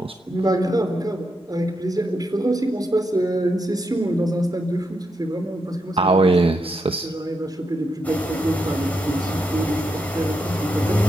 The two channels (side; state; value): both; normal; correlation 0.83